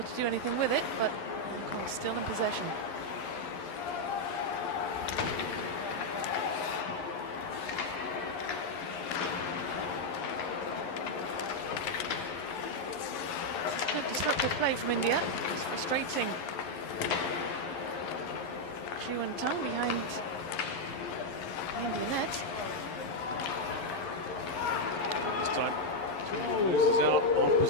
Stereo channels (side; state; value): right; late; 11 ms